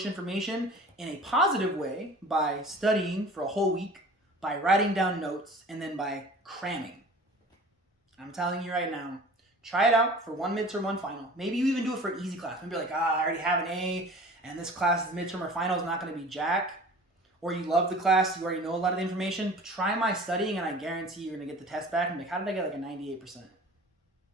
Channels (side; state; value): both; normal; correlation 0.43